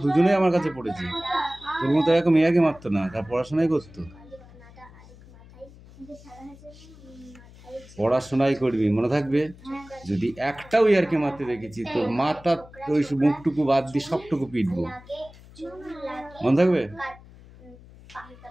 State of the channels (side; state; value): left; noise; hum, 21 dB below the sound